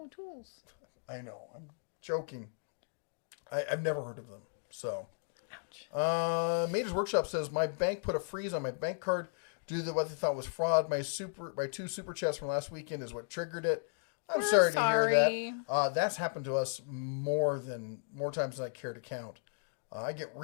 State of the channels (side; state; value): right; silent; digital silence